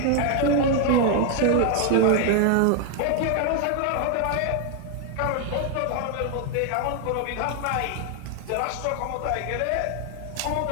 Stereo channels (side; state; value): both; different; correlation 0.00